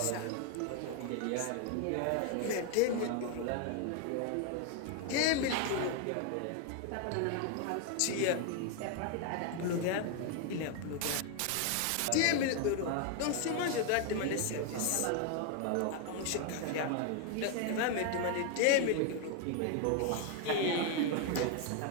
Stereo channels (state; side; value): different; both; correlation 0.01